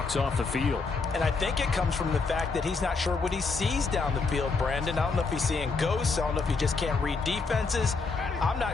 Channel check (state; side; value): quieter; right; 4.3 dB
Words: off the field. And I think it comes from the fact that he's not sure what he sees down the field, Brandon. I don't know if he's seeing ghosts. I don't know if he just can't read defenses. I'm